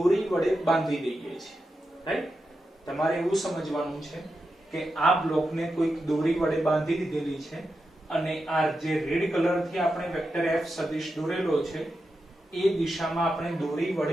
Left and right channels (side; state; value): both; normal; correlation 0.88